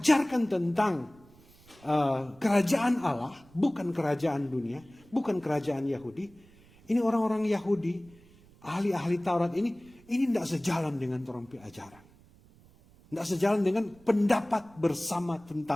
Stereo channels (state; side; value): noise; right; rumble, 26 dB below the sound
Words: tentang kerajaan Allah, bukan kerajaan dunia, bukan kerajaan Yahudi. Ini orang-orang Yahudi, ahli-ahli Taurat ini tidak sejalan dengan orang ajaran. Tidak sejalan dengan pendapat bersama